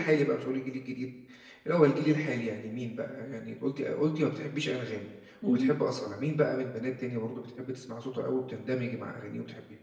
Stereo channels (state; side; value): identical; both; correlation 1.00